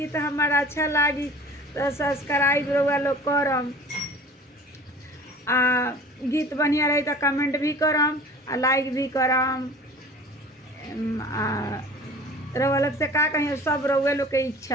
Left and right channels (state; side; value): normal; both; correlation 0.44